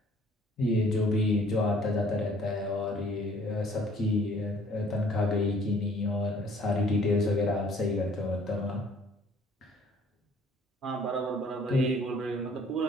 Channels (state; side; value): normal; both; correlation 0.57